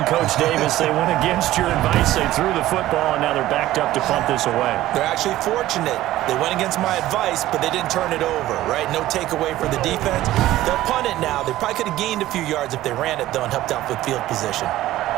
Coach Davis. They went against your advice. They threw the football, and now they're backed up to punt this away. They're actually fortunate. They went against my advice, but they didn't turn it over, right? No takeaway for the defense. They'll punt it now. They probably could have gained a few yards if they ran it, though, and helped out with field position.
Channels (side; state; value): left; quieter; 15.1 dB